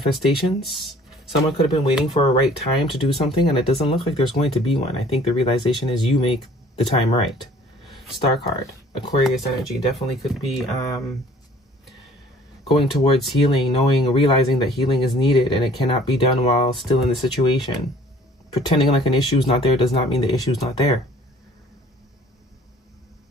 Someone could have been waiting for a right time to do something, and it doesn't look like there's going to be one. I think the realization is you make the time right. Star card, Aquarius energy, definitely could be going towards healing, realizing that healing is needed and it cannot be done while still in the situation. Pretending like an issue is not there does not mean the issue is not there.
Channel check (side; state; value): both; normal; correlation 0.54